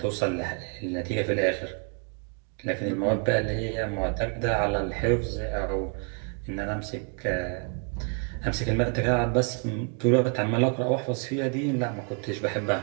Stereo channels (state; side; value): quieter; left; 39.3 dB